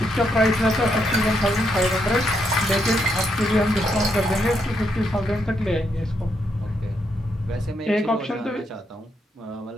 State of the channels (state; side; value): normal; both; correlation 0.78